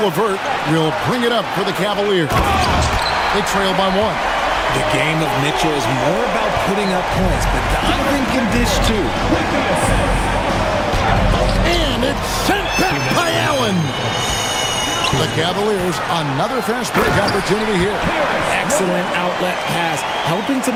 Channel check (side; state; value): both; identical; correlation 1.00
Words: LeVert will bring it up for the Cavaliers. They trail by 1. The game of Mitchell is more about putting up points, but Donovan can dish too. And it's sent back by Allen. The Cavaliers, another fast break opportunity here. Excellent outlet pass, helping to